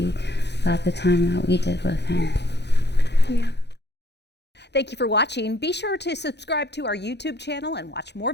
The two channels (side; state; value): right; late; 0.50 ms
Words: got the time that we did with him. yeah. Thank you for watching. Be sure to subscribe to our YouTube channel and watch more